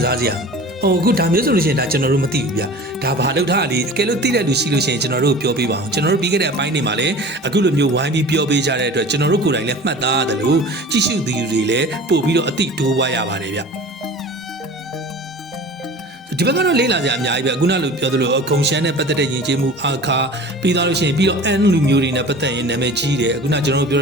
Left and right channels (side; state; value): both; normal; correlation 0.40